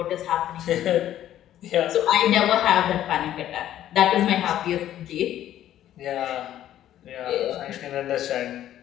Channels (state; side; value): quieter; right; 12.0 dB